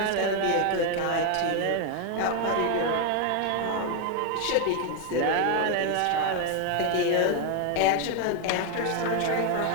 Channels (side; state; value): both; different; correlation 0.01